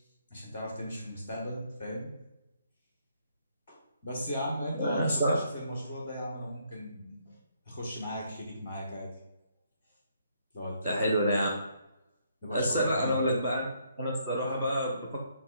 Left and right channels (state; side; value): inverted; both; correlation -0.70